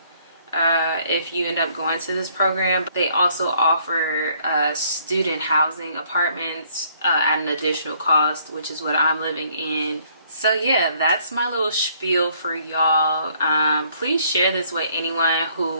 if you end up going to this program. They also offer student housing apartments at an additional cost, which is what I'm living in. So yeah, that's my little spiel for y'all. Please share this with anyone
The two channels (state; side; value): inverted; both; correlation -0.64